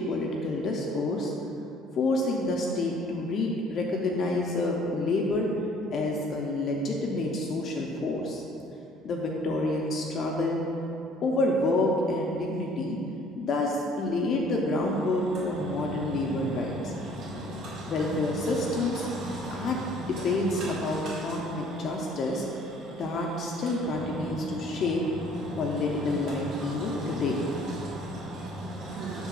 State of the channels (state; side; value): normal; both; correlation 0.56